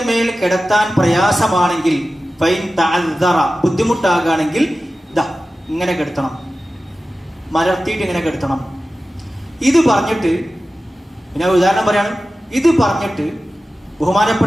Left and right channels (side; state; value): both; normal; correlation 0.95